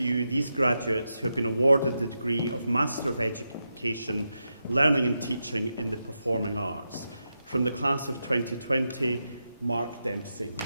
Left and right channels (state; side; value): inverted; both; correlation -0.87